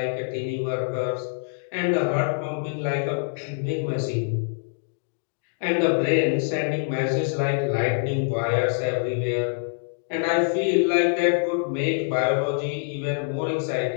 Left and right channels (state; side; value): silent; right; digital silence